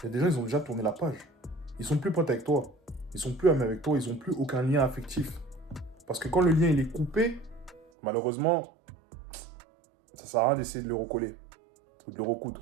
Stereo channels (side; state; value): left; drops out; at 7.9 s